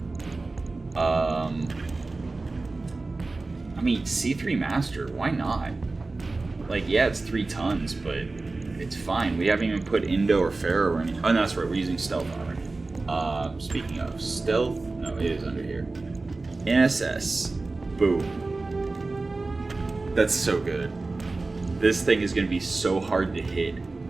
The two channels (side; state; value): left; quieter; 3.4 dB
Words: I mean, C3 Master, why not? Like, yeah, it's 3 tons, but it's fine. We haven't even put Indo or Pharaoh or anything. Oh, no, that's right, we're using stealth armor. Speaking of stealth, no, it is under here. NSS, boom. That's so good. This thing is going to be so hard to hit